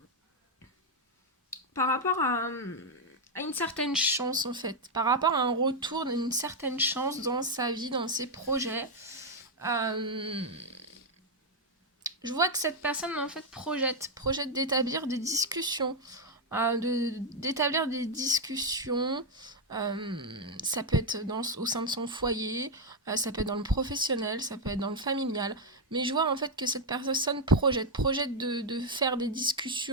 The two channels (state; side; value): normal; both; correlation 0.02